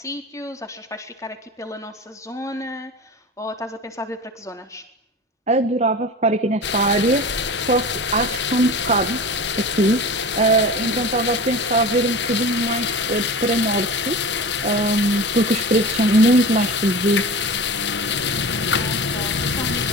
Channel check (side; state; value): both; normal; correlation 0.33